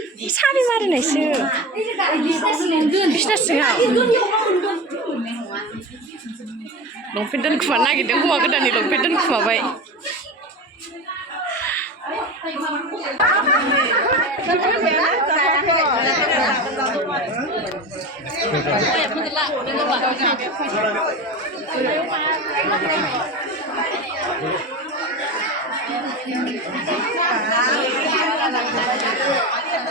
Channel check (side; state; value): both; normal; correlation 0.27